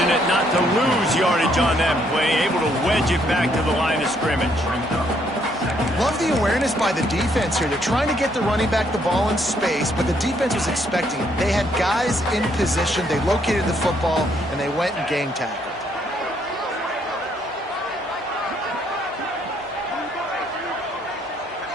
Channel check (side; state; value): both; normal; correlation 0.70